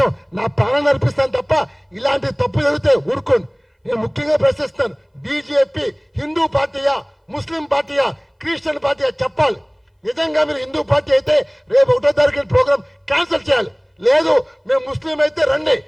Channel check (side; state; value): both; identical; correlation 1.00